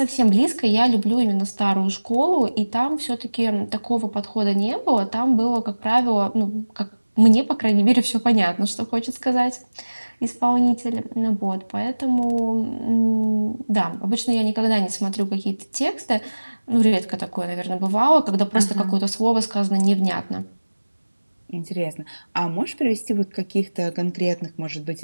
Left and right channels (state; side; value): inverted; both; correlation -1.00